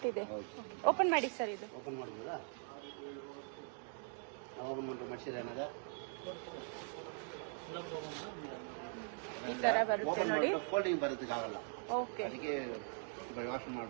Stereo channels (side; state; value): left; silent; 50 dB below the other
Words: ಇದೆ. ಹೌದು. ಓಪನ್ ಮಾಡಿ ಸರ್. ಇದು ಓಪನ್ ಮಾಡ್ಬೋದಾ? ಓಪನ್ ಮಾಡ್ರೆ ಮನುಷ್ಯರು ಏನಾದ ಈ ತರ ಬರುತ್ತೆ ಓಪನ್ ನೋಡಿ. ಮಾಡಿದ್ರೆ ಫೋಲ್ಡಿಂಗ್ ಬರುತ್ತೆ, ಆಗಲ್ಲ. ಓಕೆ, ಅದಕ್ಕೆ ವಾಶ್